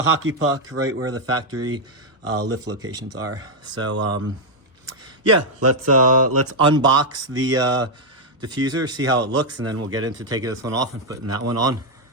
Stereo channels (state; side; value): normal; both; correlation -0.01